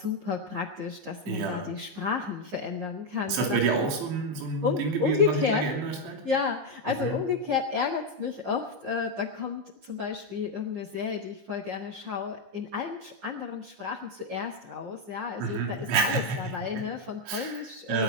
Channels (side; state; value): left; late; 15 ms